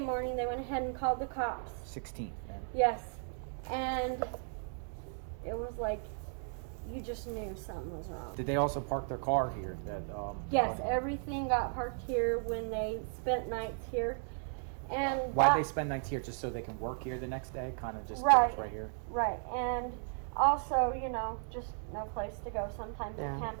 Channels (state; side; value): silent; left; 54 dB below the other